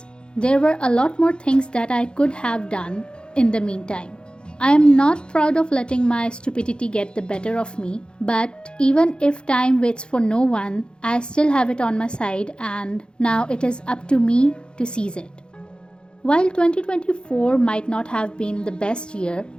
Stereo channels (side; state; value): right; late; 0.051 ms